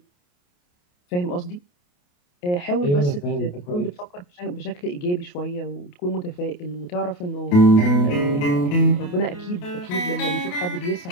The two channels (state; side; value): late; right; 28 ms